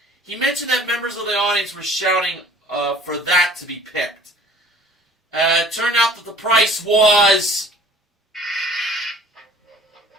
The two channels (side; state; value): both; normal; correlation 0.50